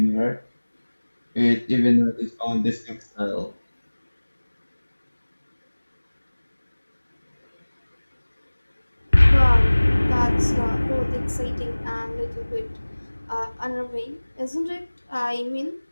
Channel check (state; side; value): inverted; both; correlation -1.00